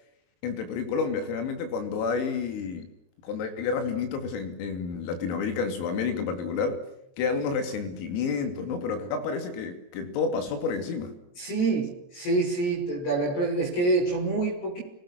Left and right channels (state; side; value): late; right; 23 ms